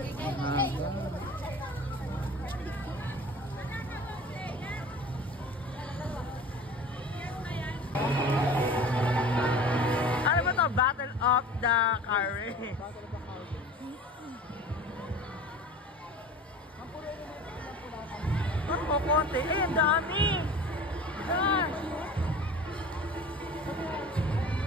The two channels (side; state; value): both; normal; correlation 0.40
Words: Ano ba to? Battle of the Car Race. Ano ko konti? Eh, ang dami. Gosh.